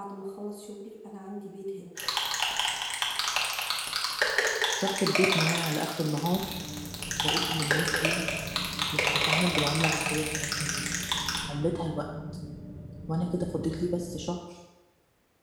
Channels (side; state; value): both; identical; correlation 1.00